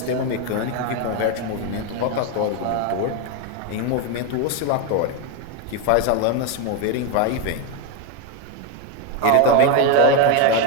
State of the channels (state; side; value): different; both; correlation 0.01